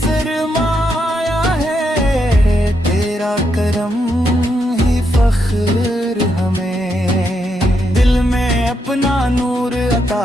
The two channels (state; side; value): normal; both; correlation 0.80